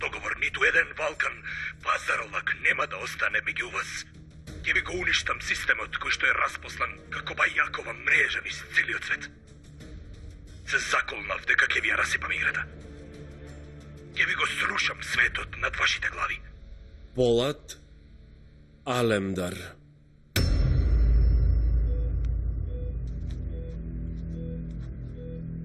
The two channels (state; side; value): identical; both; correlation 1.00